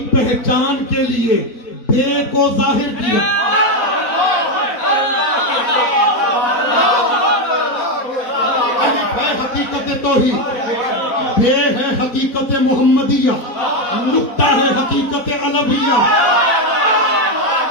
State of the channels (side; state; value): right; late; 4.0 ms